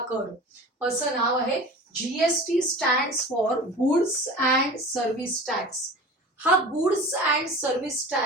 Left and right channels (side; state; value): both; normal; correlation 0.37